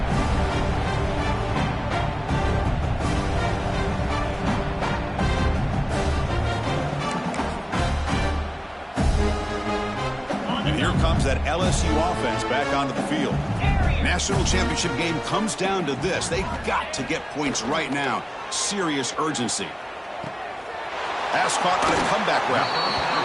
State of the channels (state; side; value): identical; both; correlation 1.00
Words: Here comes that LSU offense back onto the field. National championship game comes down to this. They've got to get points right now. Serious urgency. Pass caught on a comeback route.